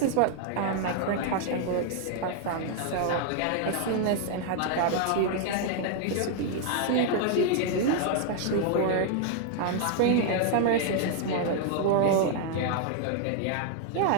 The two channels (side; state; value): both; different; correlation 0.00